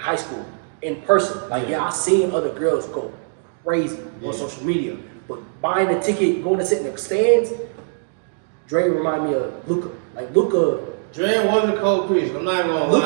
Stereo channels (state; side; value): silent; left; digital silence